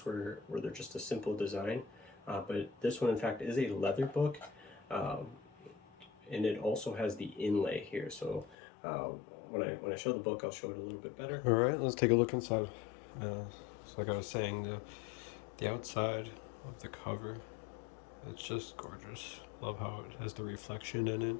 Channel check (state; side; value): drops out; right; at 8.6 s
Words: where they're just a simple design. But this one, in fact, is a leather book. And it also has the inlay here. So when I show the book, I'll show it a little bit better. All right, let's take a look inside. So like I was saying, the outside of the cover, it's just gorgeous. Love how it has the reflection in it.